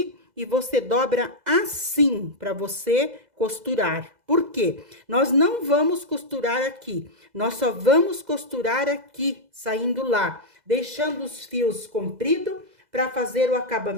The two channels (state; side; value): late; left; 2.0 ms